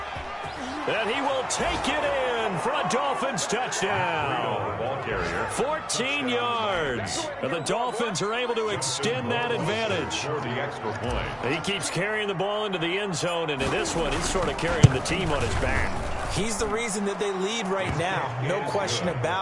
And he will take it in for a Dolphins touchdown. 14 yards. And the Dolphins are able to extend that advantage. He keeps carrying the ball into the end zone, and in this one, he's sort of carrying the team on his back. He's the reason that they lead right now. No question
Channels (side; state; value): both; identical; correlation 1.00